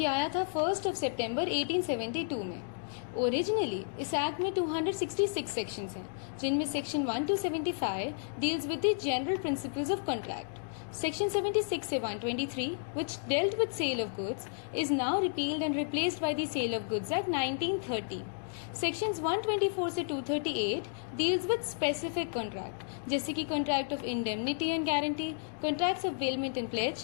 आया था 1 सितंबर 1872 में। ओरिजिनली इस एक्ट में 266 सेक्शंस हैं, जिनमें section 1 to 75 deals with the general principles of contract. Section 76 से 123, which dealt with sale of goods, is now repealed and replaced by the Sale of Goods Act 1930. Sections 124 से 238 deals with specific contract, जैसे कि Contract of Indemnity and Guarantee, Contracts of Bailment and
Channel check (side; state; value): right; silent; digital silence